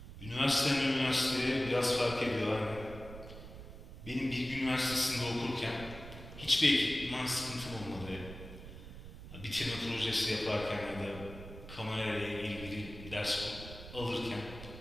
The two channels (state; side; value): noise; right; rumble, 13 dB below the sound